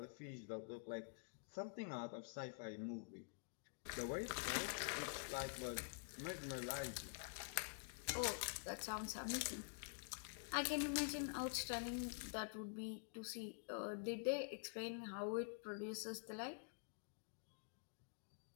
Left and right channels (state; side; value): silent; right; digital silence